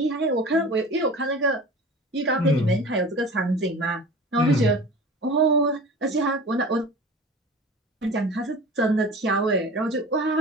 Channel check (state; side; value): normal; both; correlation 0.37